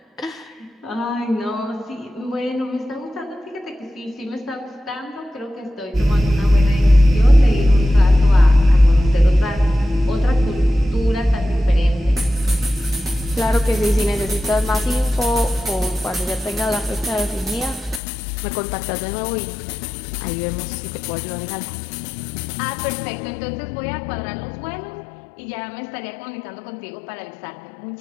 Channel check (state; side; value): drops out; right; at 18.0 s